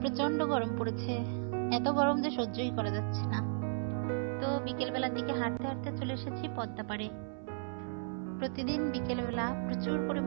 প্রচন্ড গরম পড়েছে, এত গরম যে সহ্যই করা যাচ্ছে না। তো বিকেলবেলার দিকে হাঁটতে হাঁটতে চলে এসেছি পদ্মা পাড়ে। প্রতিদিন বিকেলবেলা প্রচুর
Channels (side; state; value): left; silent; 55 dB below the other